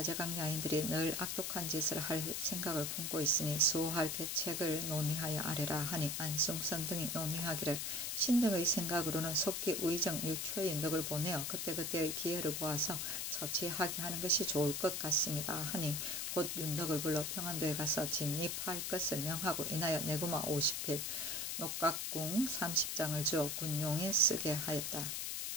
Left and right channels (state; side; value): noise; left; hiss, 2 dB below the sound